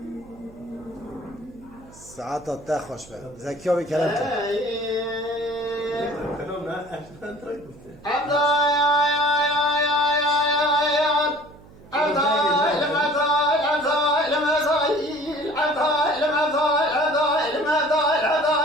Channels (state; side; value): noise; right; hum, 23 dB below the sound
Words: ساعت تا خوش به زکیا به کلام کن